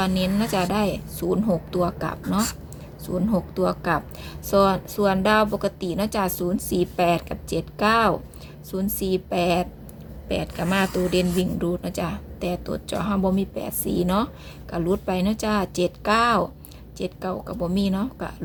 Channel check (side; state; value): both; identical; correlation 1.00